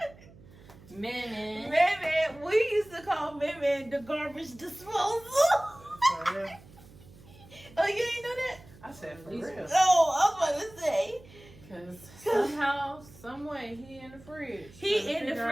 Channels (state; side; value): noise; right; hum, 22 dB below the sound